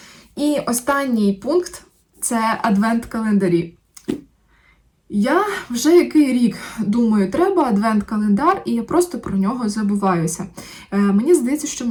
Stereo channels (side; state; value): both; identical; correlation 1.00